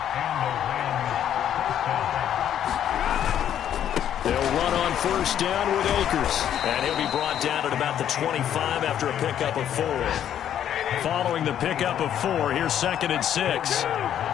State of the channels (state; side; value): quieter; right; 10.2 dB